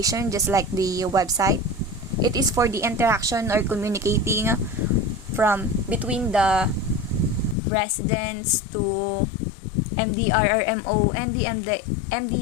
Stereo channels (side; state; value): right; drops out; at 7.6 s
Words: just like the website. It is for the interaction or communicating from between the residents to MDRRMO and the